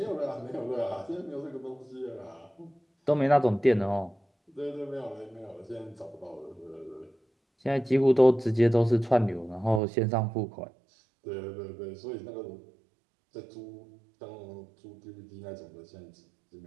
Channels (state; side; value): drops out; left; at 9.8 s